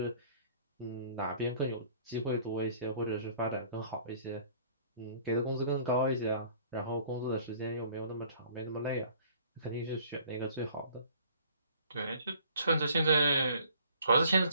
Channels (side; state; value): both; inverted; correlation -0.55